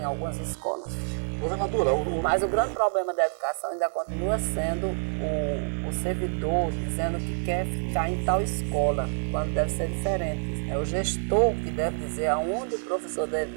algumas escolas. Governadora, mas o grande problema da educação ainda continua sendo o servidor dizendo que quer ficar em tal escola, quando deve ser diferente. É o gestor que deve dizer aonde o professor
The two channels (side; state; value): left; silent; digital silence